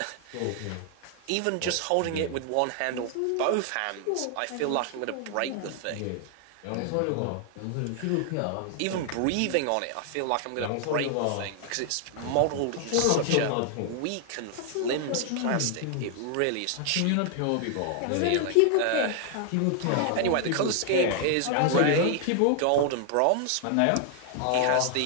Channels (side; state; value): both; different; correlation 0.00